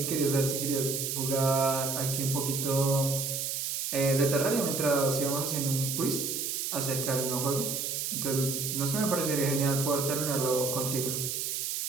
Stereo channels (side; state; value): right; noise; hiss, 2 dB below the sound